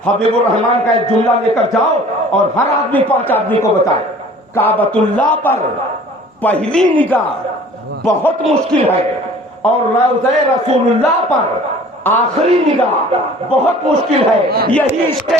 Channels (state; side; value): normal; both; correlation 0.48